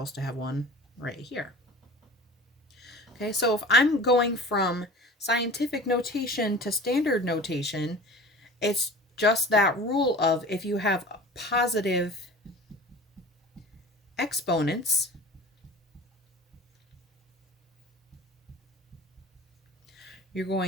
to have one right here. Okay, so if I'm going from scientific notation to standard notation, it's just that rule of if you have positive exponents, you're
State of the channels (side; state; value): both; normal; correlation 0.40